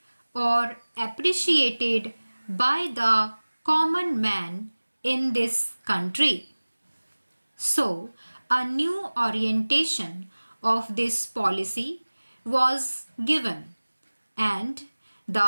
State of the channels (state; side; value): inverted; both; correlation -1.00